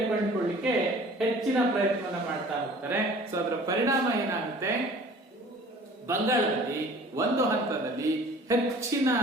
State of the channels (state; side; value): normal; both; correlation 0.48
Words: ಕಂಡುಕೊಳ್ಳಿಕ್ಕೆ ಹೆಚ್ಚಿನ ಪ್ರಯತ್ನವನ್ನ ಮಾಡ್ತಾ ಹೋಗ್ತಾರೆ. ಸೊ ಅದರ ಪರಿಣಾಮ ಏನಾಗುತ್ತೆ, ಬಂಗಾಳದಲ್ಲಿ ಒಂದು ಹಂತದಲ್ಲಿ ಹೆಚ್ಚಿನ